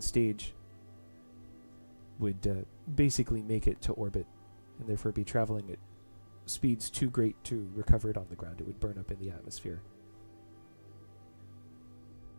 stage would basically make it to orbit and therefore be traveling at speeds too great to recover it on the ground. It would burn up in the atmosphere.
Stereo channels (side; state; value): both; inverted; correlation -1.00